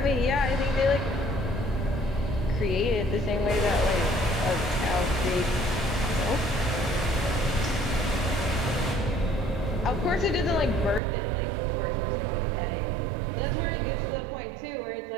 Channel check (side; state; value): left; drops out; at 11.0 s